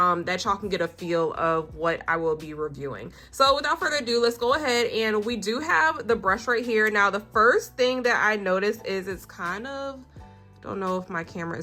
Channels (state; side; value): identical; both; correlation 1.00